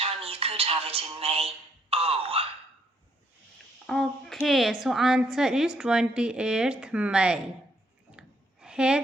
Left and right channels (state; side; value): normal; both; correlation 0.70